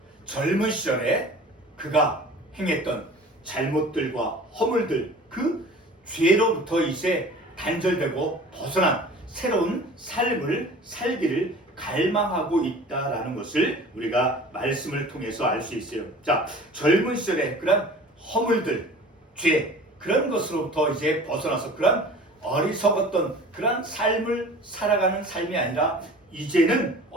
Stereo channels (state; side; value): normal; both; correlation 0.43